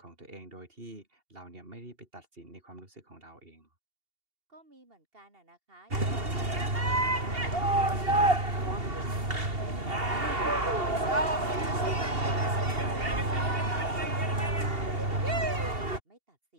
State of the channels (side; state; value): left; late; 2.8 ms